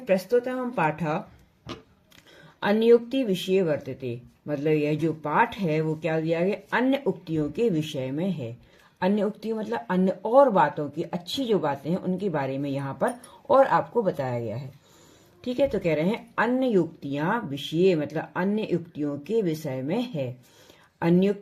प्रस्तुतः पाठा अन्योक्ति विषय वर्तते, मतलब यह जो पाठ है वो क्या दिया गया? अन्य उक्तियों के विषय में है। अन्य उक्ति मतलब अन्य और बातों की, अच्छी जो बातें हैं उनके बारे में यहाँ पर और आपको बताया गया है। ठीक है, तो कह रहे हैं अन्य युक्तियां विषय, मतलब अन्य युक्तियों के विषय में है।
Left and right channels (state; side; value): identical; both; correlation 1.00